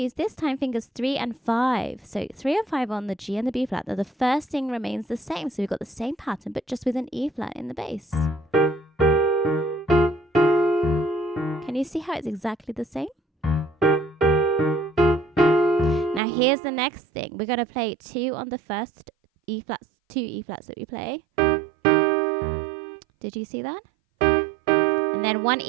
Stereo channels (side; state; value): left; drops out; at 16.2 s